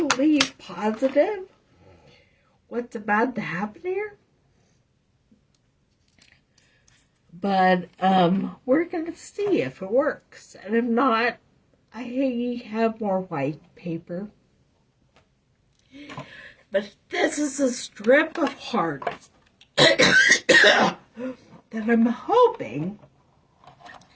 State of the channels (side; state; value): both; identical; correlation 1.00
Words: positive what's about to happen here. But we're going to see if it works. And if not, I have more white paper. But this is a strip of hearts that I'm hoping